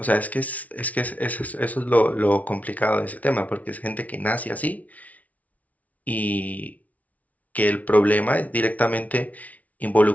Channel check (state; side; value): late; right; 0.071 ms